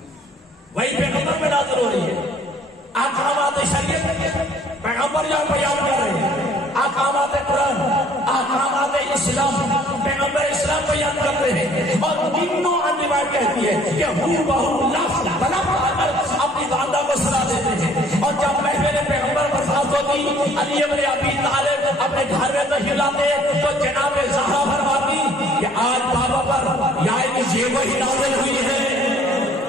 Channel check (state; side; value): normal; both; correlation 0.57